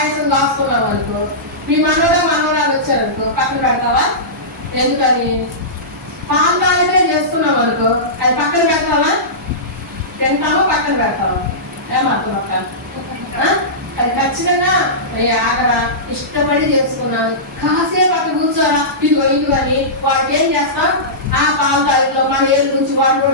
కాసుకున్నాం అనుకో, మీ మనవడో మనవరాలు వచ్చారనుకో పక్కన పెడతావా? ఎందుకని? పాలకాలనే చేసుకున్నాం అనుకో అది పక్కన పెడతావా? తింటామో పక్కన పెడతావా? ఏమర్థం అక్క? అది ఖచ్చితంగా ఆగరా ఇష్టపడి చేసుకున్నాను కాసేపు అక్కడ కూర్చోరా ఇదిగో అని వాటికి ఏం చేస్తాం? ఆ పాలకాయలో మన ఏళ్ళు నుంచి వాటి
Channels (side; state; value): both; normal; correlation -0.18